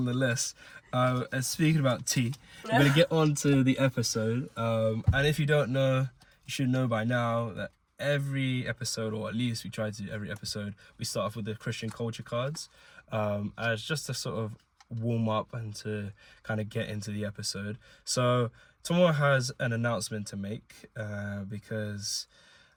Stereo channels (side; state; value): both; identical; correlation 1.00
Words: And speaking about tea, we're going to get on to the episode. And if you don't know, you should know by now that every episode, or at least we try to do every episode, we start off with the Christian culture cards as just to sort of warm up and to kind of get into the episode. So Tomo has an announcement to make because